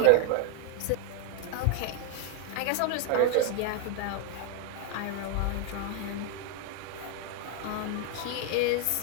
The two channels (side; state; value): both; different; correlation 0.00